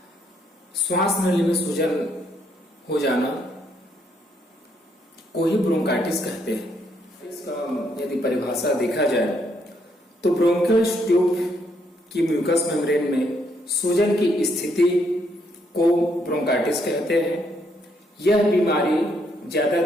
श्वास नली में सूजन हो जाना को ही ब्रोंकाइटिस कहते हैं। इसका यदि परिभाषा देखा जाए तो ब्रोंकियल ट्यूब की म्यूकस मेम्ब्रेन में सूजन की स्थिति को ब्रोंकाइटिस कहते हैं। यह बीमारी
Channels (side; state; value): both; normal; correlation 0.73